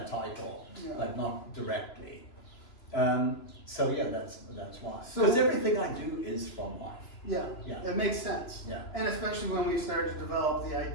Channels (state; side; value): late; right; 3.0 ms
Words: title, but not directly. So that's why. Because everything I do is from life. Yeah, it makes sense. Yeah. And especially when we started to develop the